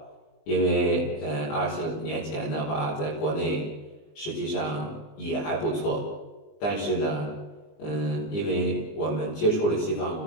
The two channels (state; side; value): late; right; 19 ms